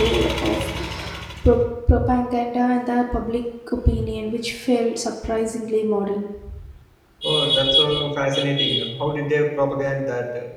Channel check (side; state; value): both; identical; correlation 1.00